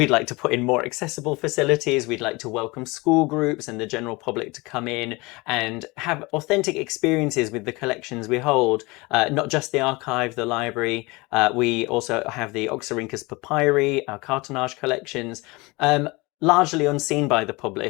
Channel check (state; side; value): quieter; right; 24.3 dB